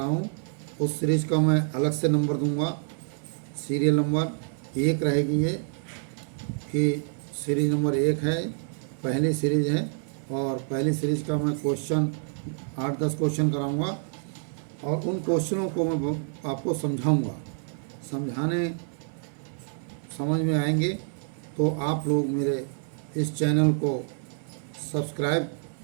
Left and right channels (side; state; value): left; silent; 60 dB below the other